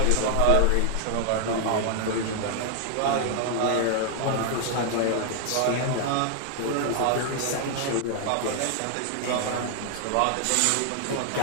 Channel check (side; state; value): both; different; correlation 0.00